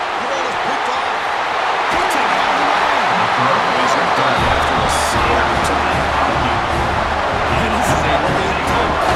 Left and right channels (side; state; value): both; identical; correlation 1.00